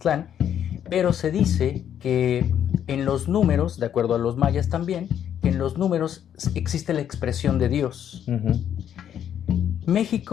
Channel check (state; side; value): quieter; right; 9.6 dB